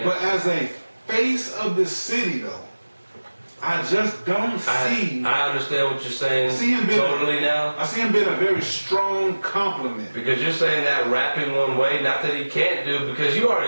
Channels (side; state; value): both; inverted; correlation -1.00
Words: But as a face of the city, though, I just don't see. I understand what you're saying. See him being totally now. I see him being a very strong compliment. Because you're saying that rapping one way, not that he can't do, because you